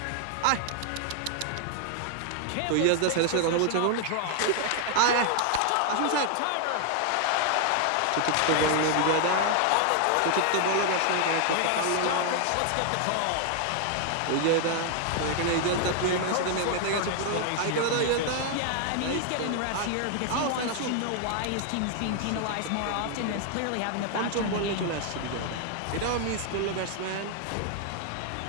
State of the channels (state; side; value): different; both; correlation 0.00